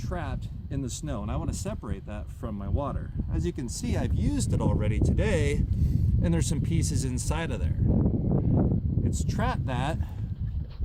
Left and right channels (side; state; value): both; identical; correlation 1.00